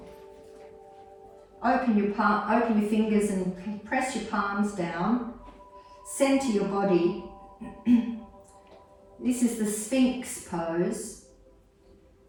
Open your fingers and press your palms down. Center your body. This is the Sphinx pose.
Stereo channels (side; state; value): both; identical; correlation 1.00